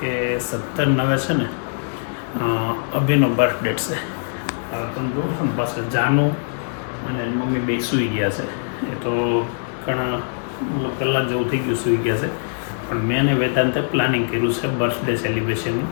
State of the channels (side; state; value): right; silent; digital silence